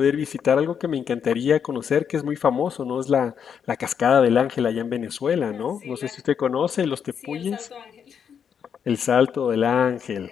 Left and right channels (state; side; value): quieter; right; 7.5 dB